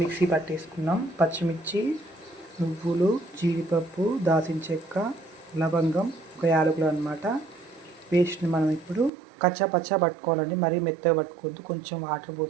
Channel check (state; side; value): drops out; left; at 9.1 s